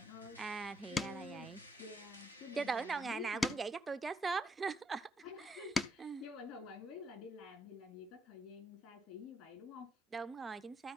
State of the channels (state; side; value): normal; both; correlation 0.75